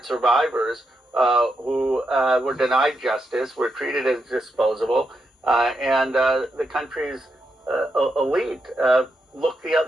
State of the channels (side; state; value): both; normal; correlation 0.83